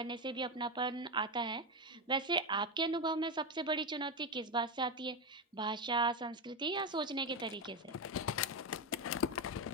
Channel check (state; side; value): normal; both; correlation 0.12